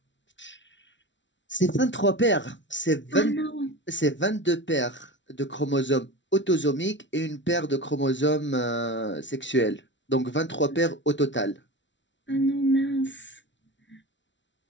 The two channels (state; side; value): late; right; 0.54 ms